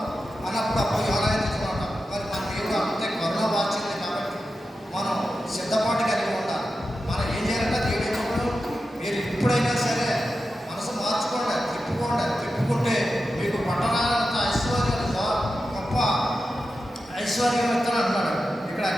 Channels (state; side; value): normal; both; correlation 0.91